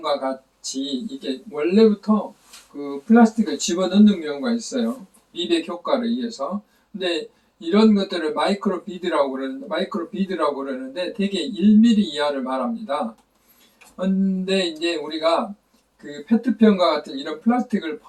같이 이게 원래부터 그 플라스틱을 집어넣는 경우가 있어요. 미백 효과를 위해서. 근데 이런 것들을 마이크로 비드라고 그러는데 대개 1mm 이하를 말합니다. 근데 이제 우리가 그 페트병과 같은 이런 플라스틱을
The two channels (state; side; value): identical; both; correlation 1.00